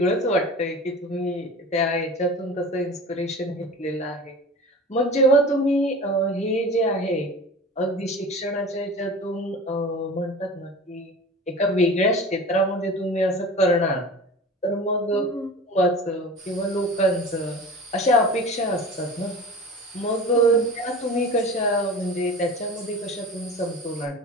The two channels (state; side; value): normal; both; correlation 0.36